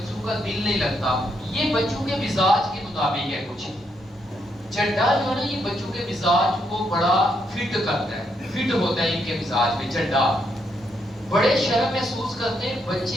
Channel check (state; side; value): normal; both; correlation 0.77